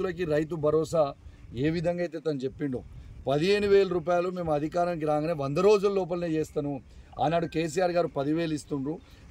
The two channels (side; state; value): both; identical; correlation 1.00